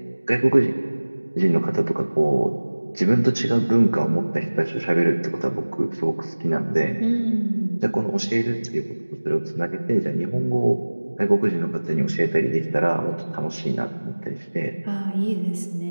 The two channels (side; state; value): both; inverted; correlation -1.00